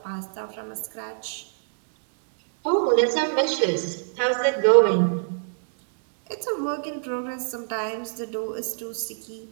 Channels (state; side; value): silent; left; digital silence